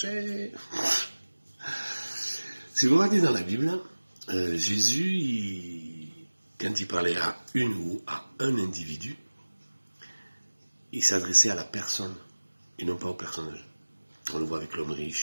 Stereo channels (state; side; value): inverted; both; correlation -1.00